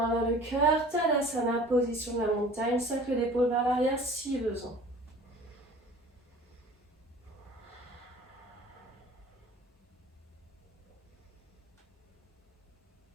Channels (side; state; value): both; normal; correlation 0.45